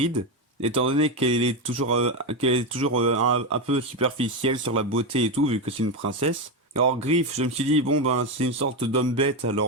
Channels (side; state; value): both; normal; correlation 0.11